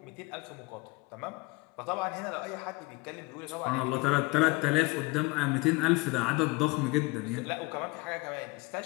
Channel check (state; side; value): quieter; right; 24.5 dB